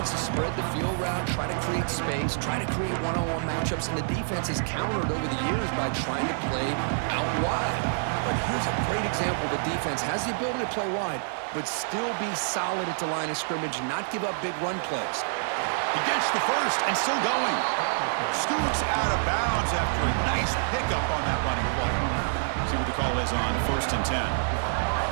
to spread the field route, try to create space, try to create one-on-one matchups, and the defense has countered over the years by trying to play out wide. But here's a great example. The defense has the ability to play wide, but still be solid at the line of scrimmage and not give up big run plays. He gets the first and still going. Scoots out of bounds after a nice pickup on that running play. See what the call is on 1st and 10.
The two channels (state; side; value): silent; left; digital silence